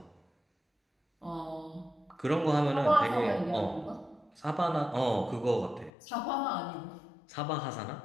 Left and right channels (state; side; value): drops out; right; at 5.9 s